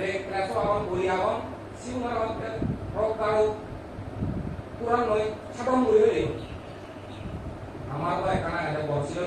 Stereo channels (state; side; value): identical; both; correlation 1.00